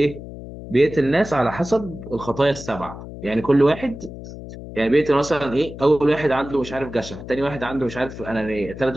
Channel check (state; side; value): noise; left; hum, 12 dB below the sound